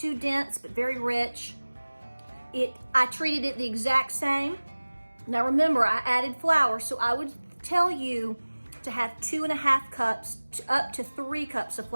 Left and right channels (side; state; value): both; inverted; correlation -1.00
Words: dense, but very rich. I treated it the exact same. Now remember, I added flour, so I would tell you to have 2.5 cups up to 3 cups of